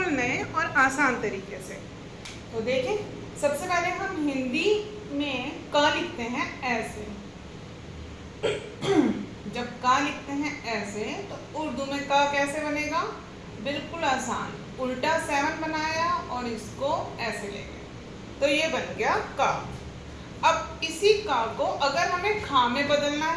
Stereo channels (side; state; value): both; identical; correlation 1.00